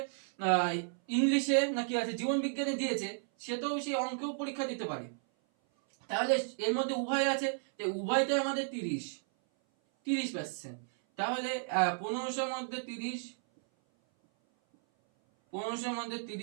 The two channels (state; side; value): silent; left; 56 dB below the other